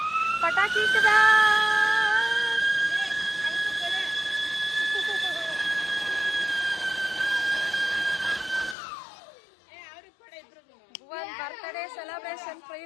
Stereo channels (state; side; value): drops out; right; at 8.8 s